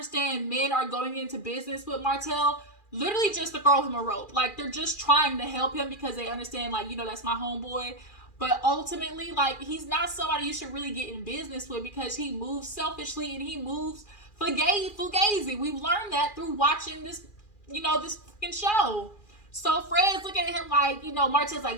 men are going into business with Martell literally just to throw him a rope. Like, they're just trying to help him because they understand, like, that's my homeboy. But ultimately, like, he's not somebody you should really get in business with because he moves selfishly and he moves fugazi. We've learned that through watching this, this fucking show. So Fred's looking at him like, Martell's like,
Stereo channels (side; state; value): right; late; 2.4 ms